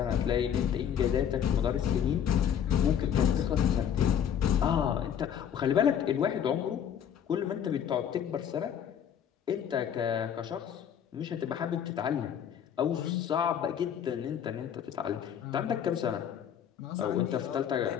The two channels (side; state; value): right; quieter; 8.8 dB